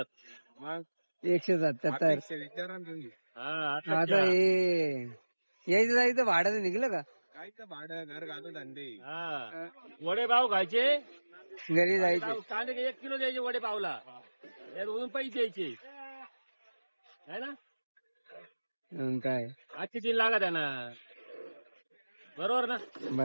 मग 177. आता हे यायचं जायचं भाडं निघलं का? काय तर भाडं घर घालून धंदे वडे पाव खायचे घरी जायचं? कांदे 1 किलो द्यायचे वडे पावला त्यावरून पैसे द्यायचे है ना काय आजची दिन लागत आहे ना बरोबर ना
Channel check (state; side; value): inverted; both; correlation -1.00